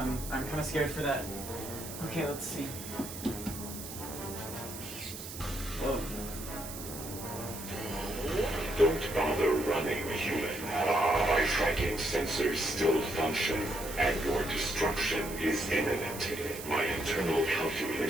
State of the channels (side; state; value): right; noise; hiss, 10 dB below the sound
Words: I'm kind of scared for that. Okay, let's see. Whoa. Don't bother running, human. My tracking sensors still function, and your destruction is imminent. My internal